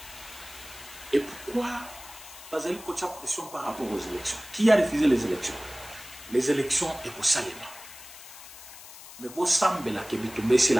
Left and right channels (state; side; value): noise; left; hiss, 16 dB below the sound